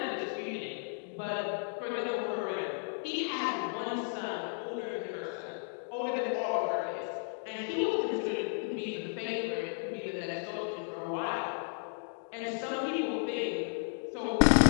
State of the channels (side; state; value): right; silent; 56 dB below the other